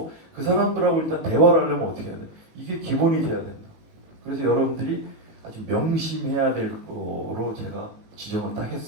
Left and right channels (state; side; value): late; left; 19 ms